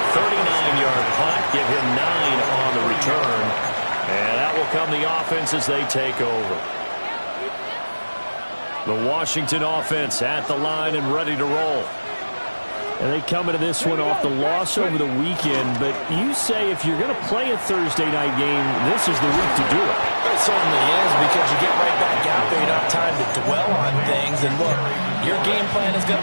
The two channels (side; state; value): both; inverted; correlation -1.00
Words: 39-yard punt, give him 9 on the return. And that will come the offense as they take over. The Washington offense at the line and ready to roll. And they come into this one off the loss over the weekend, but you say if you're going to play a Thursday night game, this is the week to do it. It certainly is, because you get right back out there. You don't have time to dwell on things. And look, your game plan is going